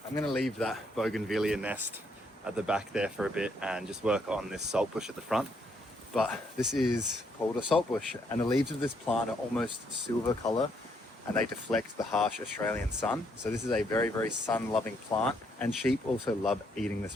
I I'm gonna leave that bougainvillea nest at the back there for a bit and just work on this saltbush at the front. But this is called a saltbush, and the leaves of this plant are almost silver color and they deflect the harsh Australian sun. So this is a very, very sun-loving plant, and sheep also love eating this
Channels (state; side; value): normal; both; correlation 0.72